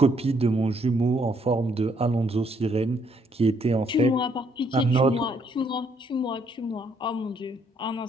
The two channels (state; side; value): normal; both; correlation 0.70